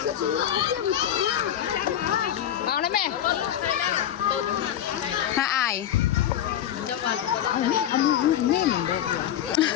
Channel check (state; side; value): quieter; right; 10.8 dB